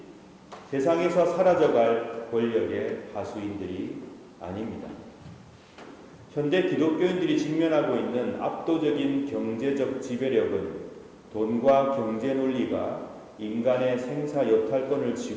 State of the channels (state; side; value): identical; both; correlation 1.00